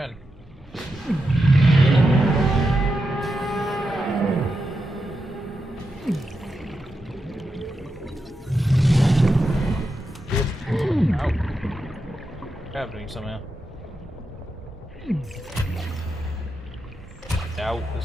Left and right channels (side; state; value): both; normal; correlation 0.87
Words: Ow. Happening somehow. Doubt